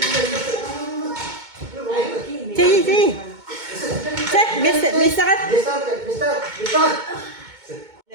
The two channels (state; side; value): late; left; 2.2 ms